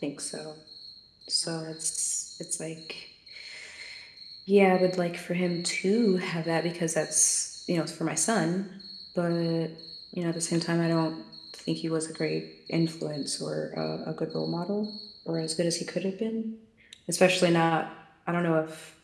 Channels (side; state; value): both; identical; correlation 1.00